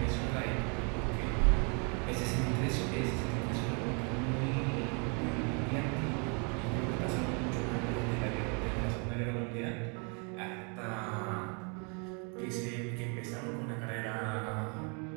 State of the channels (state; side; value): quieter; left; 36.0 dB